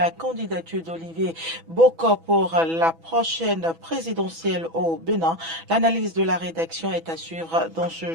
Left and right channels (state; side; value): late; left; 6.1 ms